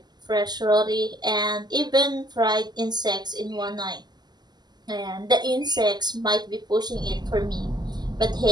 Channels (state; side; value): late; left; 0.20 ms